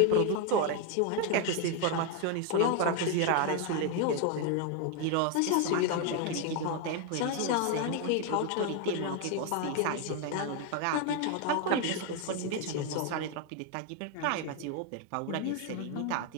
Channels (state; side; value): different; both; correlation 0.01